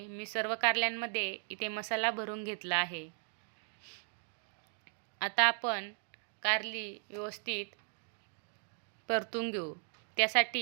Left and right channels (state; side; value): silent; left; 53 dB below the other